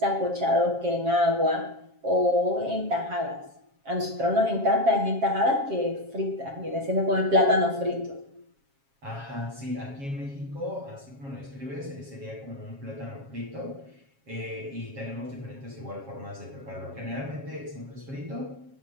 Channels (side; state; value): left; late; 7.4 ms